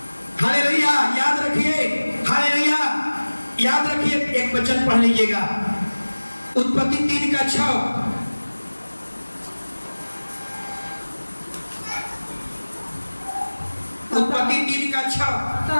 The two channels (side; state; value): both; inverted; correlation -1.00